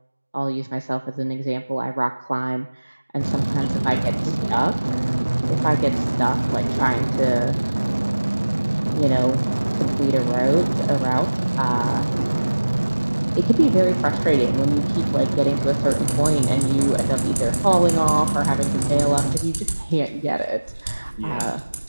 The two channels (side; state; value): both; inverted; correlation -1.00